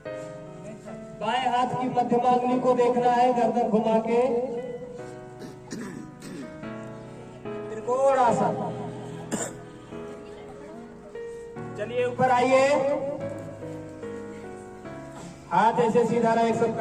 बाएं हाथ की मध्यमा अंगुली को देखना है, गर्दन घुमा के त्रिकोण आसन। चलिए ऊपर आइए, हाथ ऐसे सीधा रहे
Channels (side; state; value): both; identical; correlation 1.00